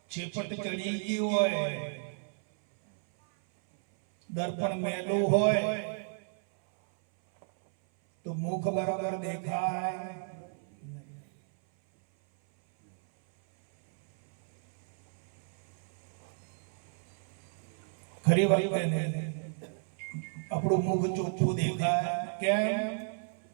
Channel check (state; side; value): silent; left; 56 dB below the other